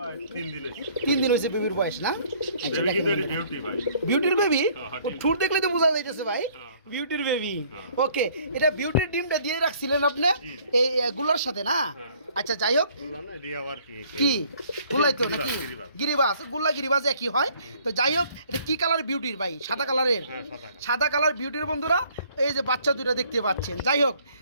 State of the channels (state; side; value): inverted; both; correlation -0.59